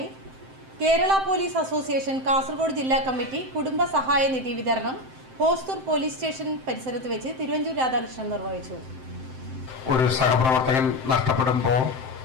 കേരള പോലീസ് അസോസിയേഷൻ കാസർഗോഡ് ജില്ലാ കമ്മിറ്റി കുടുംബ സഹായ നിധി വിതരണം ഹോസ്തൂർ പോലീസ് സ്റ്റേഷൻ പരിസരത്ത് വെച്ച് തിരുവഞ്ചൂർ രാധാകൃഷ്ണൻ നിർവഹിച്ചു. ഒരു സഹപ്രവർത്തകൻ നഷ്ടപ്പെടുമ്പോൾ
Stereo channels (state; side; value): late; left; 7.7 ms